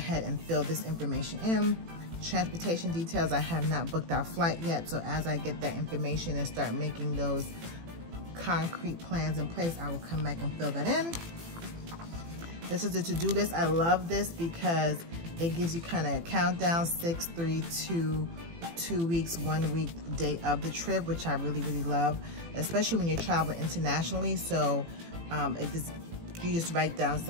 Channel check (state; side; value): late; left; 18 ms